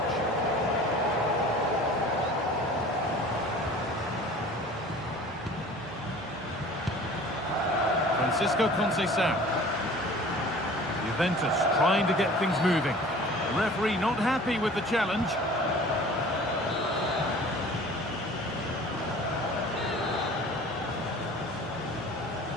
Francisco Conceição. Juventus trying to get things moving. The referee not happy with the challenge.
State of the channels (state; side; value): normal; both; correlation 0.45